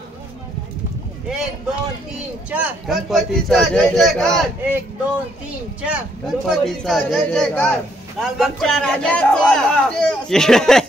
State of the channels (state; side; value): normal; both; correlation 0.71